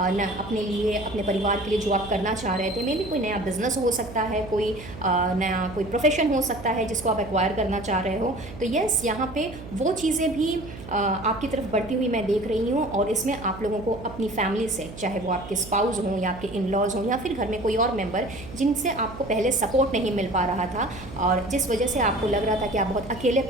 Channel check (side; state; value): right; noise; hum, 14 dB below the sound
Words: अपने लिए, अपने परिवार के लिए, जो आप करना चाह रहे थे। मे बी कोई नया बिजनेस हो सकता है, कोई नया कोई प्रोफेशन हो सकता है जिसको आप एक्वायर करना चाह रहे हो। तो यस, यहाँ पे वो चीज़ें भी आपकी तरफ बढ़ती हुई मैं देख रही हूँ, और इसमें आप लोगों को अपनी फैमिली से, चाहे वो आपके स्पाउस हों या आपके इन लॉज हों या फिर घर में कोई और मेम्बर जिनसे आपको पहले सपोर्ट नहीं मिल पा रहा था और जिस वजह से आपको लग रहा था कि आप बहुत अकेले